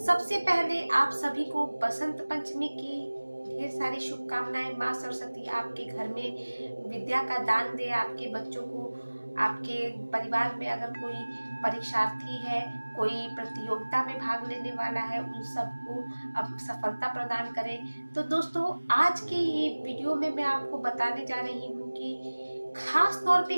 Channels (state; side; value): inverted; both; correlation -1.00